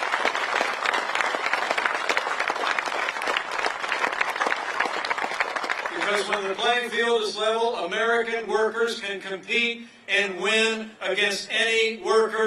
Because when the playing field is level, American workers can compete and win against any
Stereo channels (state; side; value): identical; both; correlation 1.00